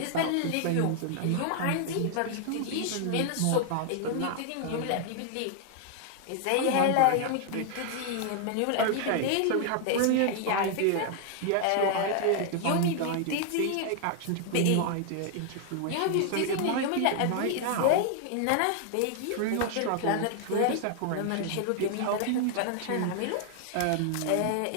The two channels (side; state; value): both; different; correlation 0.00